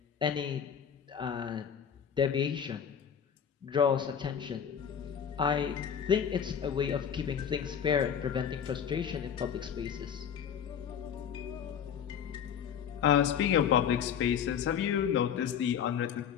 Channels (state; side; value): quieter; right; 8.0 dB